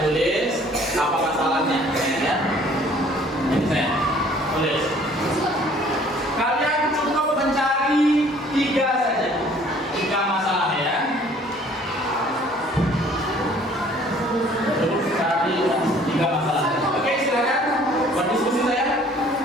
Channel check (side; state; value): both; normal; correlation 0.56